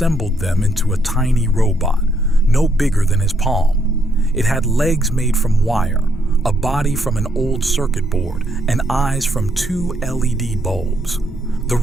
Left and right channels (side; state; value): both; normal; correlation 0.74